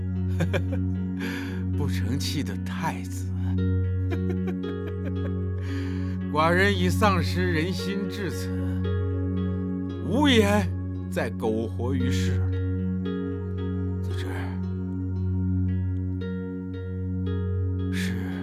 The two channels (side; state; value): both; identical; correlation 1.00